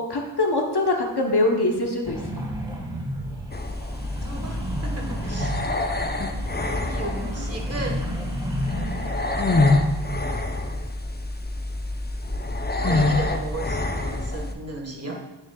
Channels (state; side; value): normal; both; correlation 0.45